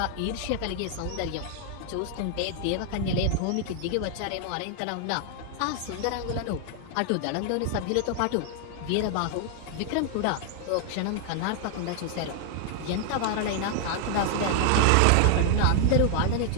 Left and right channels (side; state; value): both; different; correlation 0.00